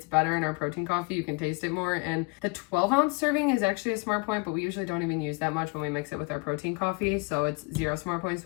better in our protein coffee. You can taste it more, and the 12-ounce serving is actually a smart point, but we usually don't even use that much when we mix it with our protein coffee, so it's 0 smart points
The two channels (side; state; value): right; quieter; 28.3 dB